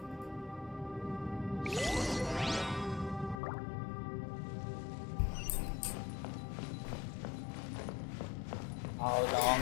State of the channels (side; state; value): right; drops out; at 3.4 s